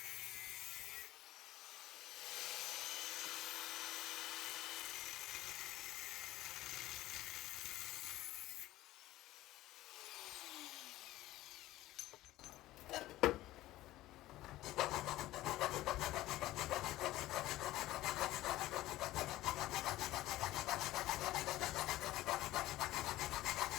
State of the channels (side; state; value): right; quieter; 16.1 dB